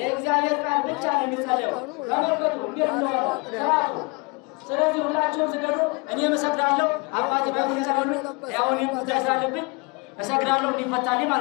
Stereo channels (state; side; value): quieter; right; 29.4 dB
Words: ቃል ብቻ ነው የሚጸለየው። ተመልከቱ እንዴት ነው ስርዓቱ። ስለዚህ ሁላችሁም ስገዱ። እኔ እሰግዳለሁ። አባቴ በሚሰራሉ ያው እኔም ተሳለብኝ እሰግዳለሁ እንዲፈታልኝ